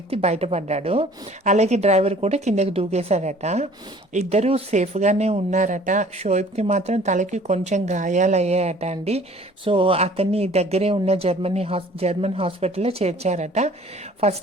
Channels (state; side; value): normal; both; correlation 0.52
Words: బయటపడ్డాడు. అలాగే డ్రైవర్ కూడా కిందకి దూకేశాడట. ఇద్దరూ సేఫ్గానే ఉన్నారట. షోయబ్కి మాత్రం తలకి కొంచెం గాయాలయ్యాయట అండి. సో అతన్ని దగ్గరే ఉన్న జర్మన్ హాస్పిటల్లో చేర్చారట.